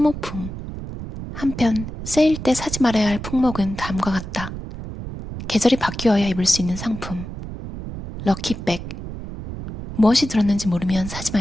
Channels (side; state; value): right; noise; rumble, 9 dB below the sound